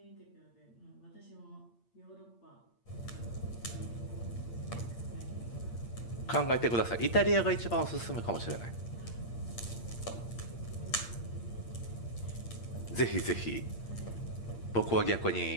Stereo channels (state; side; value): late; right; 8.7 ms